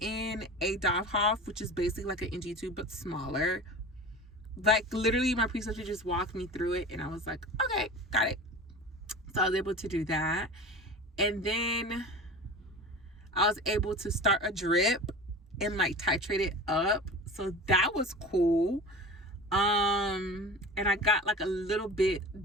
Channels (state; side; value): normal; both; correlation 0.35